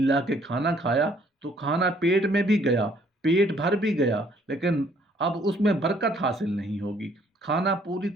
کے کھانا کھایا تو کھانا پیٹ میں بھی گیا، پیٹ بھر بھی گیا، لیکن اب اس میں برکت حاصل نہیں ہوگی، کھانا پوری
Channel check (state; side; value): normal; both; correlation 0.63